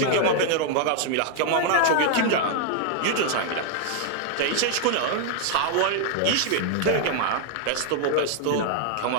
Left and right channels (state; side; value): different; both; correlation 0.00